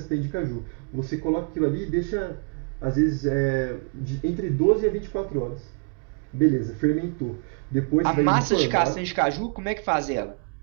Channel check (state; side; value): quieter; left; 36.8 dB